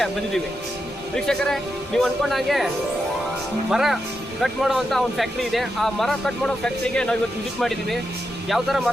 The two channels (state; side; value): normal; both; correlation 0.86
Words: ಬಂದಿದ್ದೀವಿ. ವೀಕ್ಷಕರೇ, ನೀವು ಅಂದ್ಕೊಂಡಾಗೆ ಮರ ಕಟ್ ಮಾಡುವಂಥ ಒಂದು ಫ್ಯಾಕ್ಟ್ರಿ ಇದೆ. ಆ ಮರ ಕಟ್ ಮಾಡೋ ಫ್ಯಾಕ್ಟ್ರಿಗೆ ನಾವು ಇವತ್ತು ವಿಸಿಟ್ ಮಾಡಿದ್ದೀವಿ. ಯಾವ ಥರ